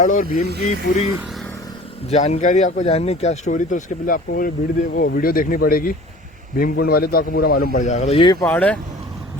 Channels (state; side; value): normal; both; correlation 0.44